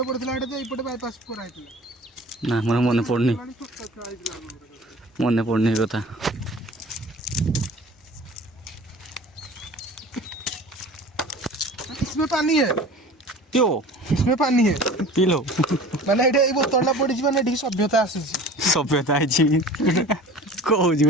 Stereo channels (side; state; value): both; normal; correlation 0.42